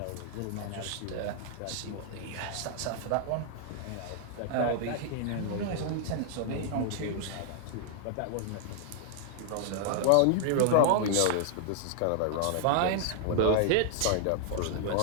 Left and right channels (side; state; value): both; different; correlation -0.01